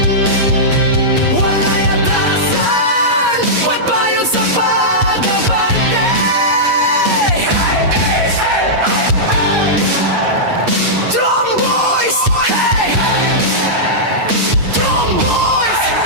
Wala'y atrasan, pagbayon sa pag-abante. Tromboys, hey! Tromboys,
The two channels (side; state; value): left; late; 8.4 ms